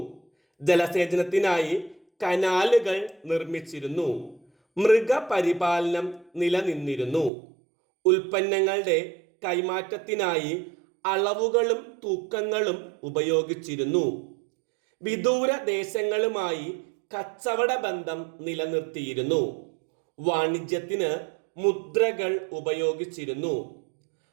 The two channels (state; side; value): drops out; left; at 7.3 s